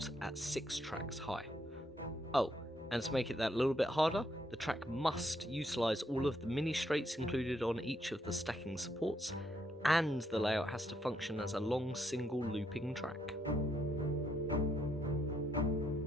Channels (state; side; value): normal; both; correlation 0.75